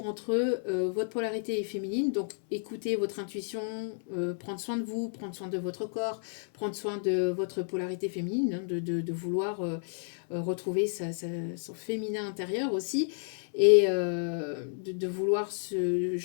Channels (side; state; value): right; silent; 57 dB below the other